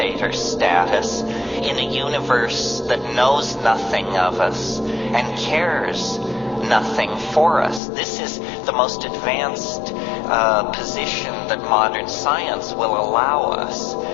status in a universe that knows nothing of us and cares nothing for us. This is the most advanced position that modern science will allow us.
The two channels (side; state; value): right; drops out; at 7.8 s